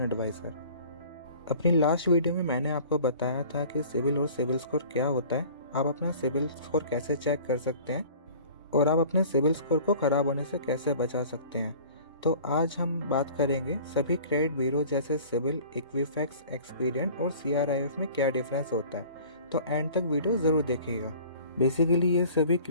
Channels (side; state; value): both; inverted; correlation -0.46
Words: एडवाइज़र। अपनी लास्ट वीडियो में मैंने आपको बताया था कि सिविल और सिविल स्कोर क्या होता है, आप अपना सिविल स्कोर कैसे चेक कर सकते हैं और आप अपने सिविल स्कोर को ख़राब होने से कैसे बचा सकते हैं। तो आज हम बात करेंगे सभी क्रेडिट ब्यूरो जैसे सिविल, इक्विफैक्स, एक्सपीरियन और CRIF में क्या डिफरेंस होता है। तो एंड तक वीडियो ज़रूर देखिएगा। बेसिकली ये सभी